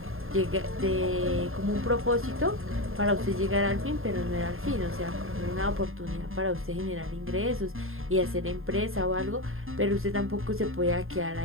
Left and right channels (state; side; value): late; left; 0.61 ms